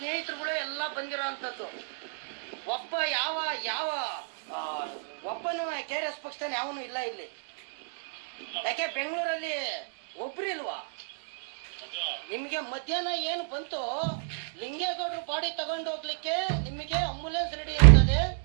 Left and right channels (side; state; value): left; silent; digital silence